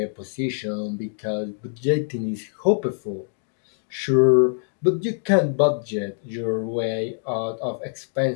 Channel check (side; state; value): right; silent; 61 dB below the other